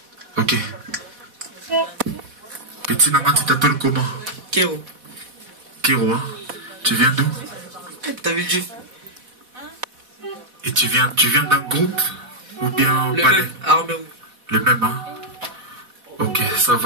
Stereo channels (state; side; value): late; left; 4.1 ms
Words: Ok. Petit Nama, tu t'appelles comment? Kéro. Kéro, hein? Tu viens d'où? T'as vu Dieu? Et tu viens d'un groupe? Ou bien le palais? Même, Armée Rouge. Le même, hein? Ok, ça